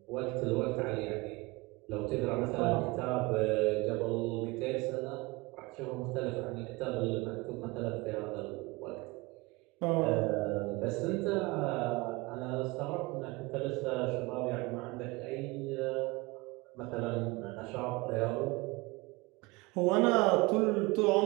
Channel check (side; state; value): left; quieter; 23.8 dB